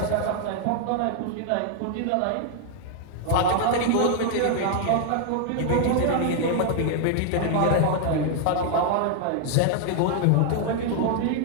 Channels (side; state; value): both; different; correlation 0.00